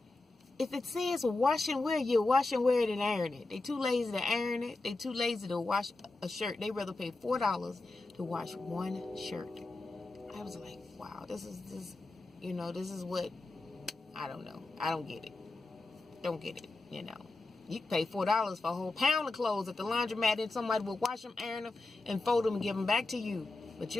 If it says wash and wear, you wash and wear it and iron it. They too lazy to iron it. They too lazy to wash a shirt. They rather pay $4 to wash one shirt. I was like, wow, this is what, I don't know. I don't get it. Don't get it, You can pay $4 for a whole pound of clothes at the laundromat, and somebody will wash them, iron them, and fold them and give them back to you. But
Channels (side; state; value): right; quieter; 3.1 dB